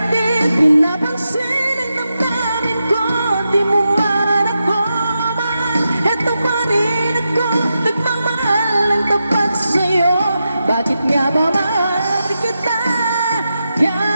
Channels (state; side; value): inverted; both; correlation -0.88